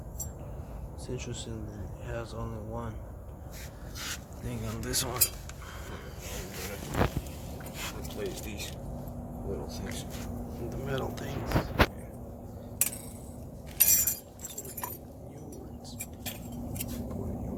It's interesting that it has only one thing on this one. replace these little things. The metal things. Put a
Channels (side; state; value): both; identical; correlation 1.00